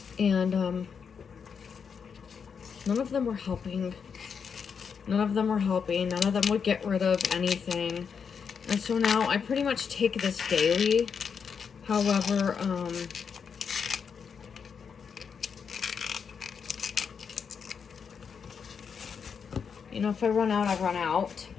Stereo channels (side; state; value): right; quieter; 6.4 dB